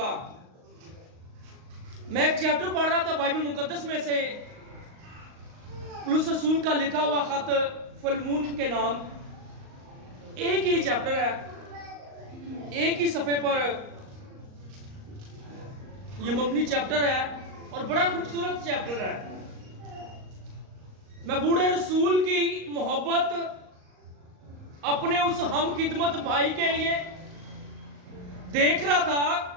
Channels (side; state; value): left; late; 38 ms